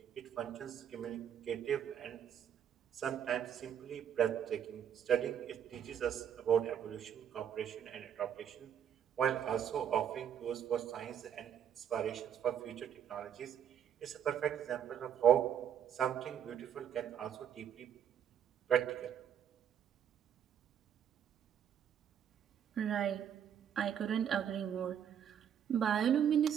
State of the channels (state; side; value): quieter; left; 9.1 dB